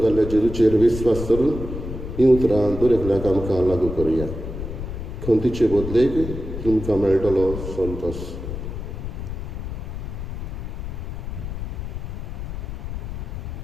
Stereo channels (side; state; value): left; noise; rumble, 6 dB below the sound